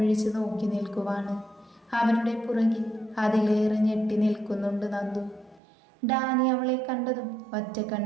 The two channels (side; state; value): left; drops out; at 5.6 s